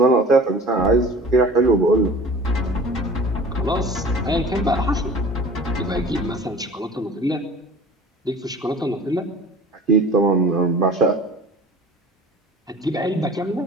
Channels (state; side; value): normal; both; correlation 0.42